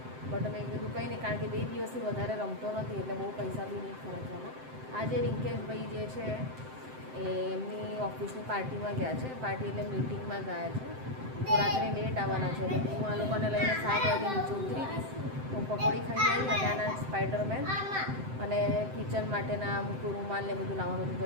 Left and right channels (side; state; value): left; late; 7.7 ms